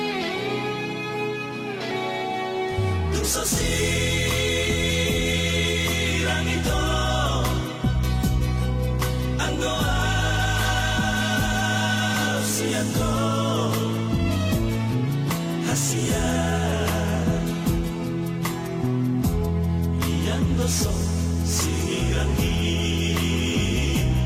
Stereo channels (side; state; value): both; identical; correlation 1.00